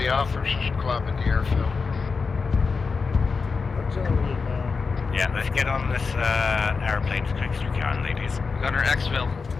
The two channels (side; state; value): right; quieter; 4.8 dB